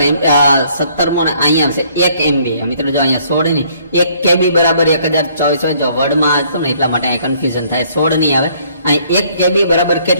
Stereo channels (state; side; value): inverted; both; correlation -0.63